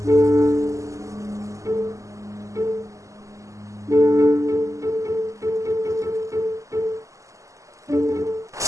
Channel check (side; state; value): left; late; 0.16 ms